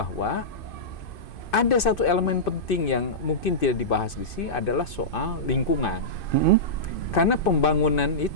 ada satu elemen penting yang mungkin tidak dibahas di sini adalah soal lingkungan. Karena pembangunan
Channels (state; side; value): late; right; 2.6 ms